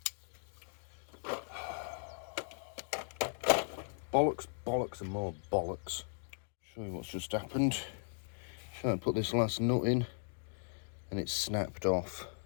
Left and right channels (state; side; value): silent; right; digital silence